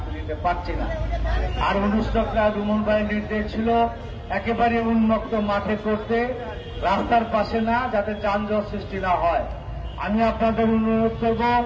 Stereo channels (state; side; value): identical; both; correlation 1.00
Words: দিতে পারছি না। আর অনুষ্ঠানটা রুমন ভাইয়ের নির্দেশ ছিল একেবারে উন্মুক্ত মাঠে করতে, রাস্তার পাশে না, যাতে যানজট সৃষ্টি না হয়। আমি আপনাদের অনুরোধ করব